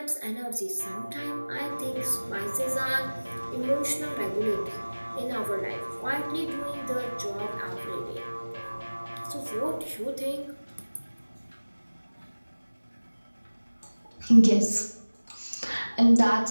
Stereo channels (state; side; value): inverted; both; correlation -1.00